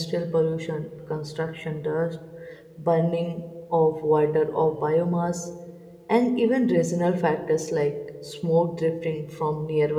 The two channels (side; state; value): both; identical; correlation 1.00